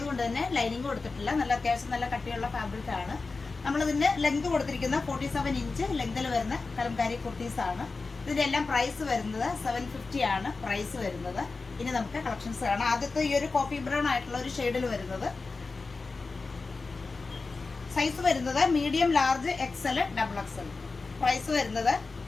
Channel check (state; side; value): quieter; right; 4.0 dB